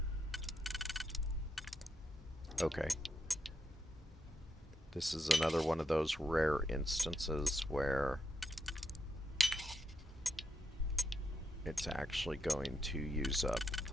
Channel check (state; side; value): normal; both; correlation 0.82